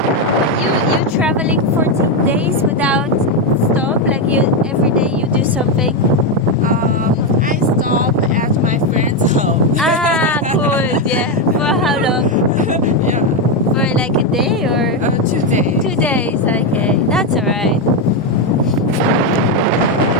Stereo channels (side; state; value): both; normal; correlation 0.07